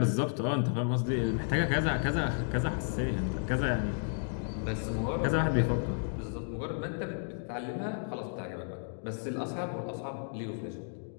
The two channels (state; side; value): silent; right; digital silence